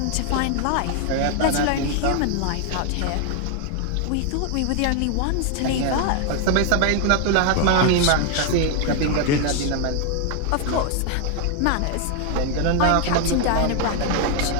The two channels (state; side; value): different; both; correlation 0.00